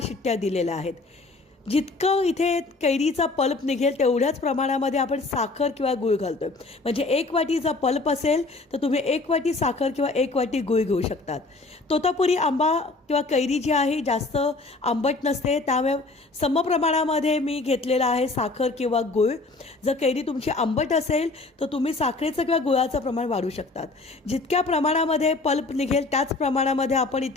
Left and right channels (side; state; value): right; quieter; 3.4 dB